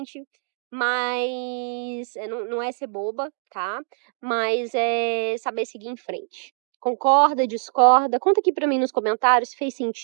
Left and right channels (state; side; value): silent; left; 59 dB below the other